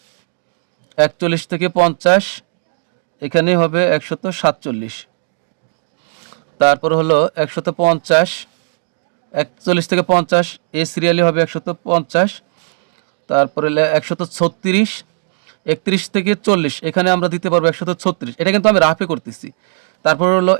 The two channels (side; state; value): left; silent; 68 dB below the other